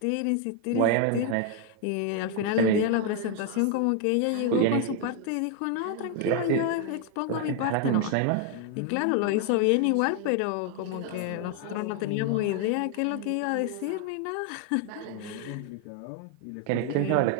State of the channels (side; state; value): both; different; correlation 0.01